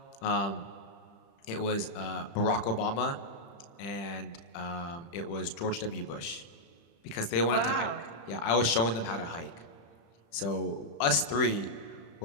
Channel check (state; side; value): late; right; 35 ms